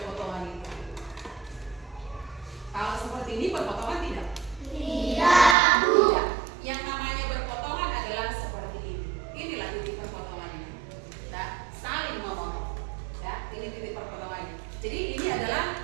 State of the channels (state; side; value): drops out; left; at 5.6 s